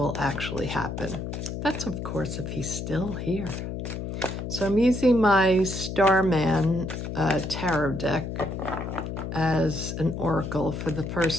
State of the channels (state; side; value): noise; left; hum, 5 dB below the sound